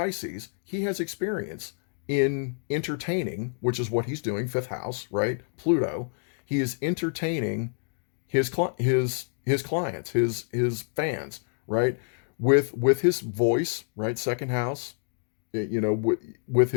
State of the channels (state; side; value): silent; right; digital silence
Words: he has experience in entertaining, which is what he's doing, fifth house, right? Pluto. He is entertaining his clients, his fans, right? With his voice, right? Second house, with